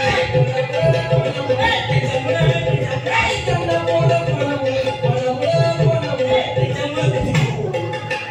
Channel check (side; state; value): both; identical; correlation 1.00